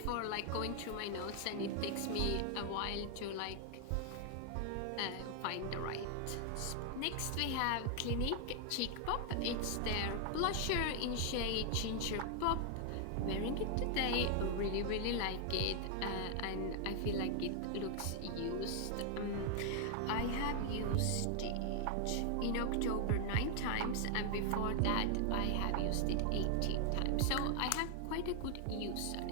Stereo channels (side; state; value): both; different; correlation 0.00